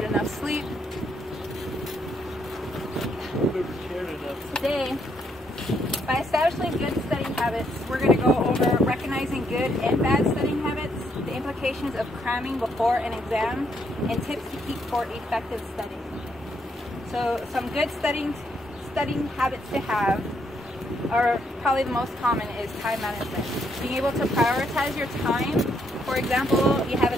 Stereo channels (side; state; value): both; normal; correlation 0.74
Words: enough sleep. Today, by establishing good studying habits, we're going to go over recognizing good and bad studying habits, the implications of cramming before an exam, and tips to keep for effective studying. So some good studying habits to have are probably the most common is time management. Being able to prioritize your time. For example, you have